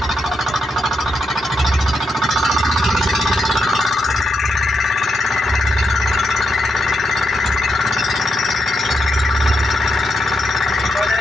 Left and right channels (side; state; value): both; normal; correlation 0.82